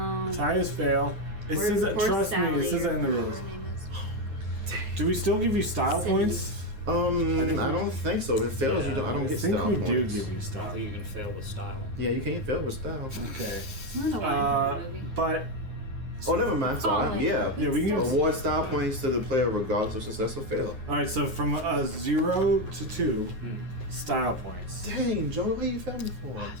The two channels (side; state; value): left; late; 9.5 ms